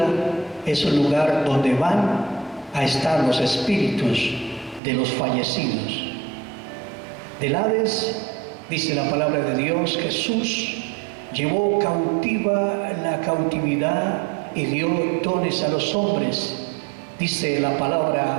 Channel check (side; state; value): left; drops out; at 4.8 s